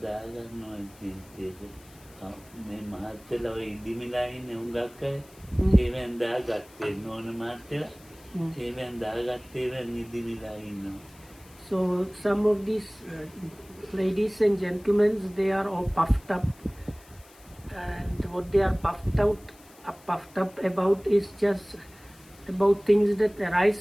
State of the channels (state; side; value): noise; left; hiss, 25 dB below the sound